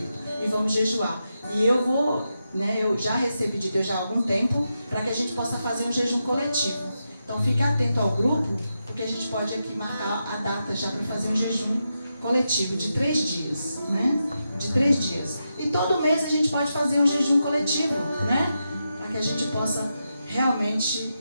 e vamos jejuar. E eu já recebi de Deus já há algum tempo para que a gente possa fazer um jejum coletivo. Então fique atento ao grupo, porque a gente pode aqui marcar a data já para fazer um jejum coletivo de 3 dias, né? De 3 dias. E todo mês a gente pode fazer um jejum coletivo, né? Para que a gente possa realmente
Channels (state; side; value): inverted; both; correlation -0.87